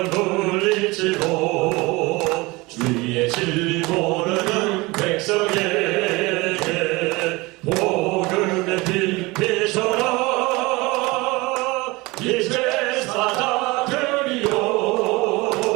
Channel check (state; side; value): quieter; left; 23.2 dB